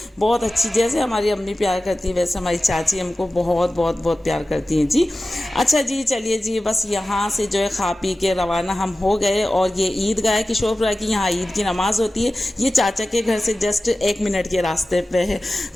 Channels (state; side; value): normal; both; correlation 0.96